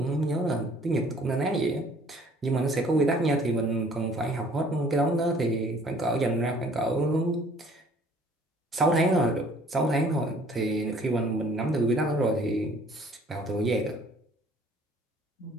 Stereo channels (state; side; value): normal; both; correlation 0.56